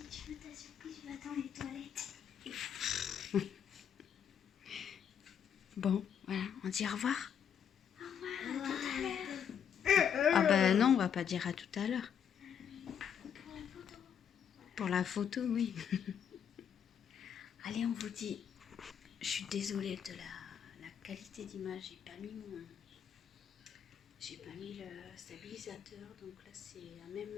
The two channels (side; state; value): right; quieter; 8.2 dB